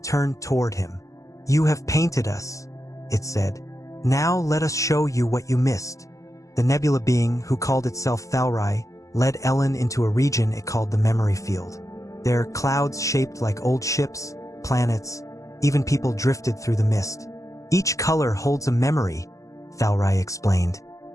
turned toward him. You have painted us, it said. Now let us show you what you missed. The nebula being, who called itself Thalrai, led Ellen into a region it called the memory field. There, clouds shaped like old ships, planets, even people drifted through the mist. Each color holds a memory, Thalrai explained.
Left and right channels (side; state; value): right; late; 0.16 ms